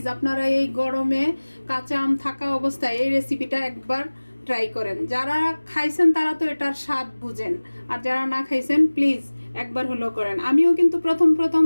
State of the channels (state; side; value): inverted; both; correlation -1.00